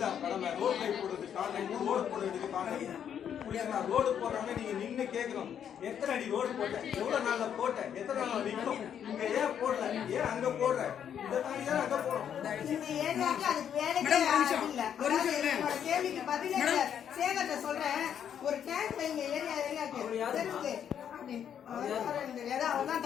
கடமை. ரோட் லைட் போடுறது கான்ட்ராக்ட், ரோடு போட வேண்டியது கான்ட்ராக்ட். ரோடு போடுறோம்னா நீங்க நின்று கேட்கணும், எத்தனை அடி ரோடு போட்டேன், எவ்வளவு நாள்ல போட்டேன், எத்தனை நாள் நிற்கும், இங்க ஏன் போடல, ஏன் அங்க போடுற, இதை தாண்டி தான் அங்க போறோம். இந்த ஏரியாவுக்கு அதுக்கு வேலைக்கே யாரும் இல்ல. என்னோட கேள்விக்கு பதிலே இல்ல. சேகர்ட்ட சொல்றேன், ஒரு டேங்க் வைங்க ஏரியாவுக்கு தெரியுது. ஏதோ அவர்தான்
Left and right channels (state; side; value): quieter; right; 8.9 dB